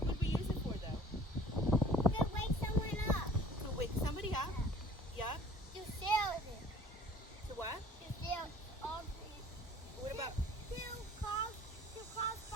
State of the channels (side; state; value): both; normal; correlation 0.50